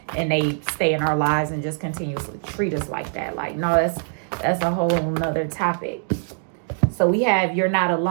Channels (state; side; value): silent; left; digital silence